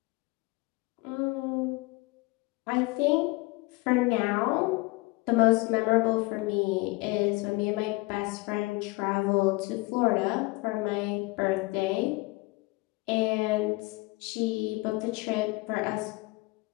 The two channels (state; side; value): quieter; right; 23.8 dB